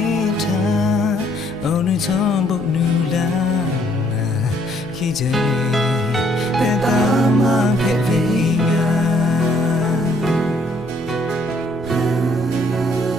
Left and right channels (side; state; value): both; normal; correlation 0.66